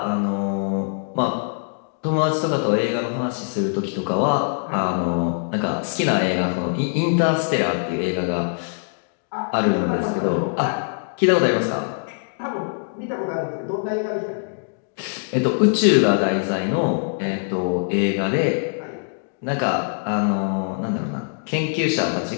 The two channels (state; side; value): silent; right; digital silence